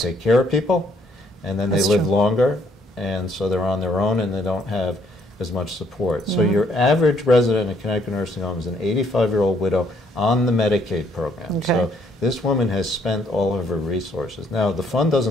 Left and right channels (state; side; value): normal; both; correlation 0.67